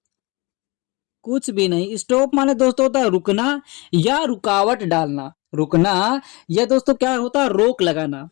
कुछ भी नहीं। स्टॉप माने दोस्तों होता है रुकना या रुकावट डालना। रुकना या दोस्तों क्या होता है, रोक लगाना।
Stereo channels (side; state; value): right; quieter; 25.7 dB